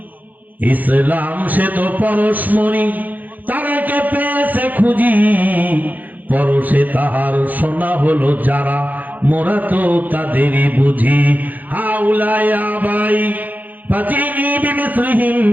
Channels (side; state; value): left; late; 0.082 ms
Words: ইসলাম সে তো পরশমণি, তারাকে পেয়েছে খুঁজি, পরশে তাহার সোনা হলো যারা, মোরা তো তাদেরই বুঝি। হাউলাই আবাই ফাজিনি বিমিসলিহিম